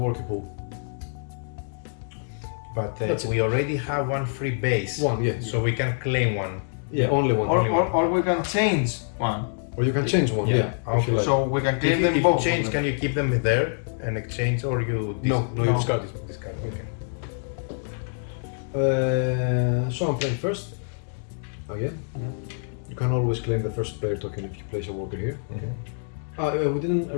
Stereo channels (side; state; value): right; silent; digital silence